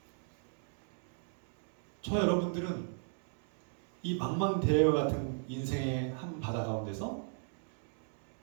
저 여러분들은 이 망망대해와 같은 인생의 한 바다 가운데서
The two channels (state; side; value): silent; left; 54 dB below the other